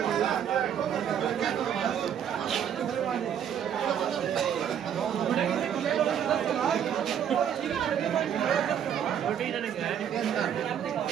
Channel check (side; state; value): left; quieter; 9.0 dB